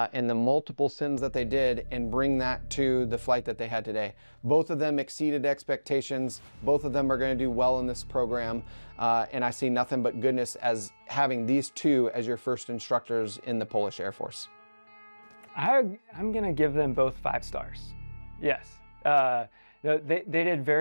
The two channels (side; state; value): both; inverted; correlation -1.00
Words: the multiple sims that they did, and bring that to the flight that they had today. Both of them exceeded expectations. Both of them are going to do well in this program, and I see nothing but goodness as having these two as your first instructors in the Polish Air Force. I'm going to give them both 5 stars. Yes. They did